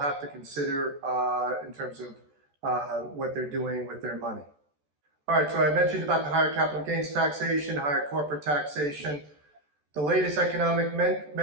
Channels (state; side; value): late; left; 14 ms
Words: to consider in terms of what they're doing with their money. All right, so I mentioned about the higher capital gains taxation, higher corporate taxation. The latest economic